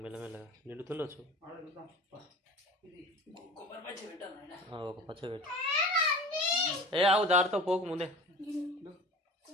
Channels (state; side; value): normal; both; correlation 0.38